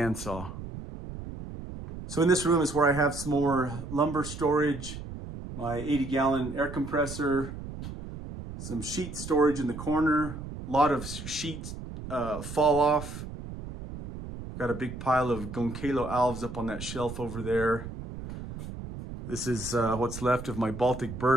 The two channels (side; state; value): right; noise; rumble, 10 dB below the sound